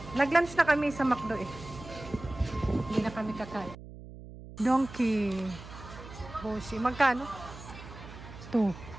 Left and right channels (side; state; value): right; noise; hum, 15 dB below the sound